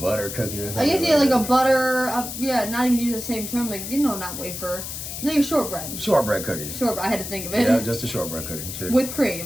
cookie or something. I guess, yeah, like a butter, not even use the same term, like, you know, not wafer, like a shortbread. Shortbread cookies. Shortbread, I had to think of it. Yeah, just a shortbread cookie. Cheers. With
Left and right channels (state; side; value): noise; left; hiss, 7 dB below the sound